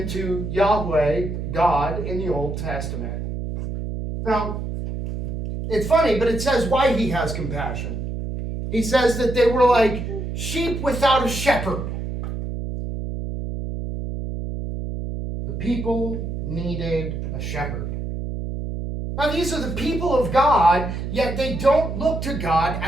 to Yahweh, God, in the Old Testament. Now, it's funny, but it says why he has compassion. He says that they were like sheep without a shepherd. The people needed a shepherd. Now, these are the people of God, yet they don't look to God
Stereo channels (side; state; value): right; noise; hum, 5 dB below the sound